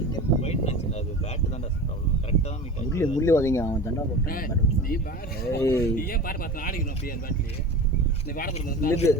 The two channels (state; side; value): normal; both; correlation 0.33